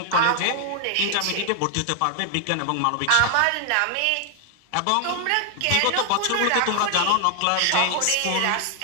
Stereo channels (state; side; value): different; both; correlation 0.00